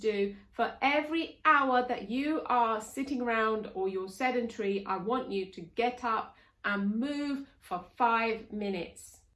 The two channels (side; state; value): both; identical; correlation 1.00